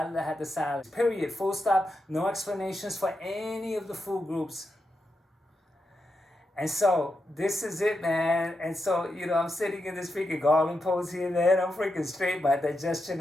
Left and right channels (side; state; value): both; normal; correlation 0.86